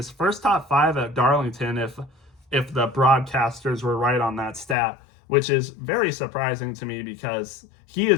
first top five at Darlington, if the broadcasters were right on that stat, which is very surprising to me because he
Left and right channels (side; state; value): right; drops out; at 4.8 s